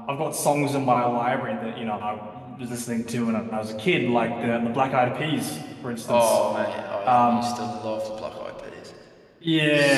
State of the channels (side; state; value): both; identical; correlation 1.00